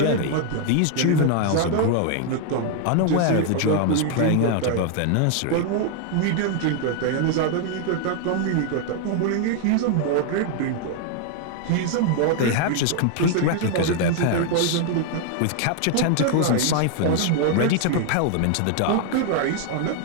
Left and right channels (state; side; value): different; both; correlation 0.00